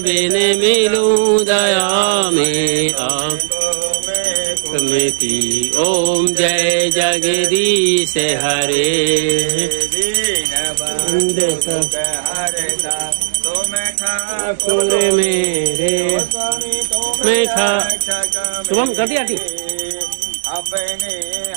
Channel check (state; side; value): silent; left; digital silence